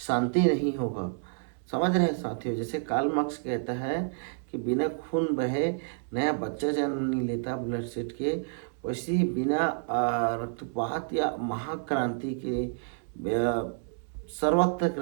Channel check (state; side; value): silent; left; digital silence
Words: शांति नहीं होगा। समझ रहे हैं साथियों, जैसे कार्ल मार्क्स कहता है कि बिना खून बहे नया बच्चा जन्म नहीं लेता ब्लड सेट के, वैसे ही बिना रक्तपात या महाक्रांति के सर्वत्र